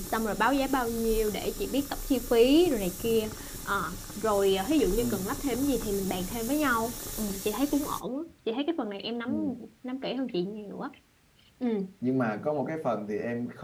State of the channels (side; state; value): both; identical; correlation 1.00